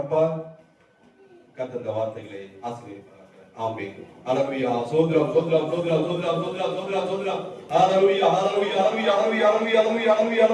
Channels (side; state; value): both; identical; correlation 1.00